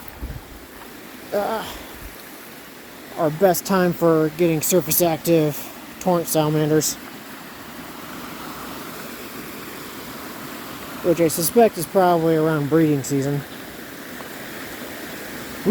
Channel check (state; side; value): identical; both; correlation 1.00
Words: best time for getting surface active torrent salamanders. Which I suspect is probably around breeding season.